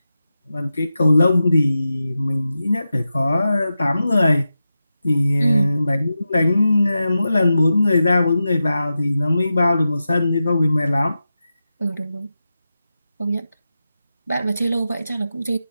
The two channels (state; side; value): inverted; both; correlation -0.91